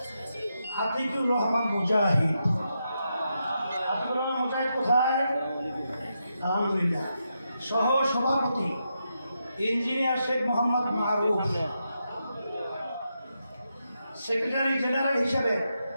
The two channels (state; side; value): inverted; both; correlation -0.84